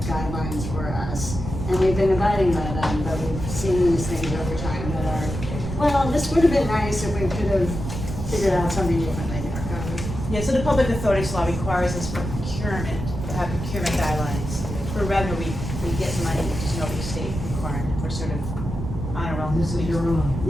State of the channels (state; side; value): noise; right; rumble, 6 dB below the sound